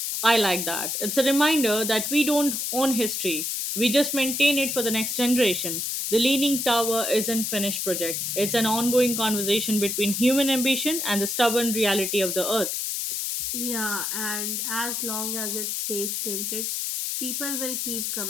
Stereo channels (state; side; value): noise; left; hiss, 2 dB below the sound